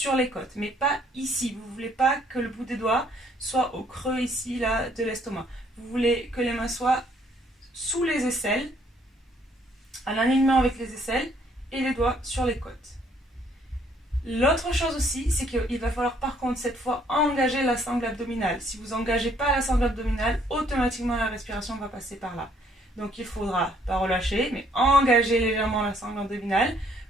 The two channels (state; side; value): normal; both; correlation 0.65